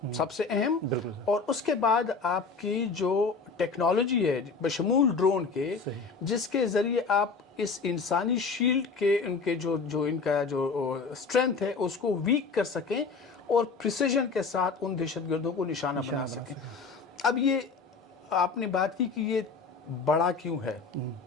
سب سے اہم، اور اس کے بعد آپ کی جو ٹیکنالوجی ہے بشمول ڈرون کے، جس کے ذریعے آپ اس انسانی شیلڈ کے ان کا جو اسٹرینتھ ہے اس کو ویک کر سکیں اور پریسیجن کے ساتھ ان دہشت گردوں کو نشانہ بنا سکیں۔ اب یہ آپ نے بات کی کہ یہ بڑا کیوں ہے.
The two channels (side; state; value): right; quieter; 4.7 dB